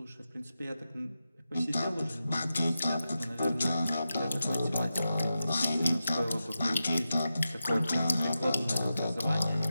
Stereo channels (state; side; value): inverted; both; correlation -0.91